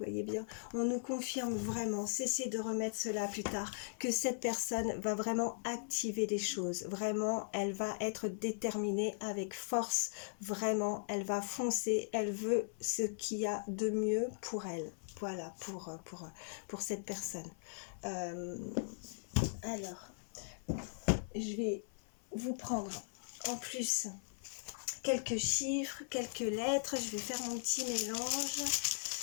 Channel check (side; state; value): right; silent; 52 dB below the other